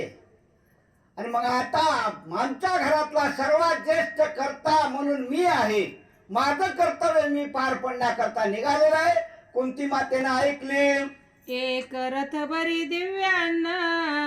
आणि मग आता आमच्या घरातला सर्वात ज्येष्ठ कर्ता म्हणून मी आहे. माझं कर्तव्य मी पार पडण्याकरता निघालेला आहे. कुंती मातेनं ऐकले. एक रथ बरी दिव्यान्न,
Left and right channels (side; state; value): both; identical; correlation 1.00